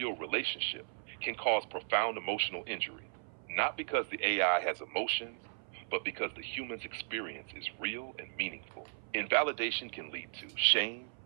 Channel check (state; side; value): silent; left; 54 dB below the other